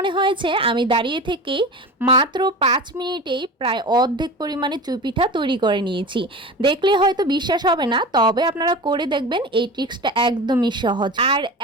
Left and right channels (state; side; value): normal; both; correlation 0.31